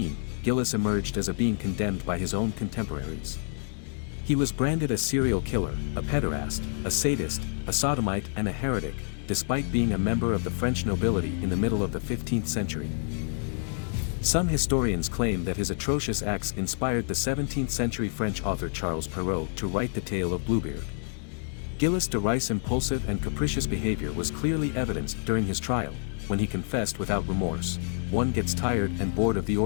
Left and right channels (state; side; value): silent; right; 59 dB below the other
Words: Gilles emerged as a being condemned by his own contemporaries. He was branded a serial killer, a pederast, a sadist, a sodomite and a heretic, despite being a member of the French nobility in the middle of the 15th century. Some historians claim that his atrocious acts inspired the 17th-century French author Charles Perrault to write the tale of Bluebeard. Gilles de Rais' impulsive and capricious behavior was clearly evidenced during his trial, when he confessed without remorse, "One gets tired and bored of the